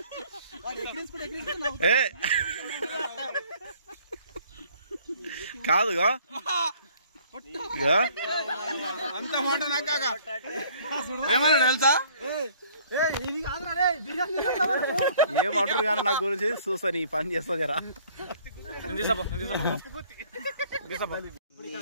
కాదుగా అంత మాట నాకా ఏమన్నా తెలుసా? ఏమంటారు కానీ నా గురించి చూస్తాను ఈ పని చేస్తా జరా. అవన్నీ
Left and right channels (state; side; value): inverted; both; correlation -0.57